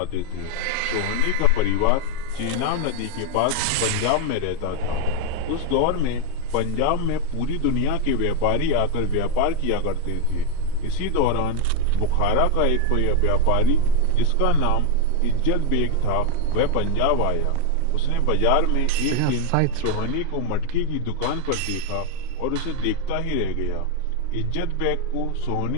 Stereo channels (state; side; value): different; both; correlation 0.01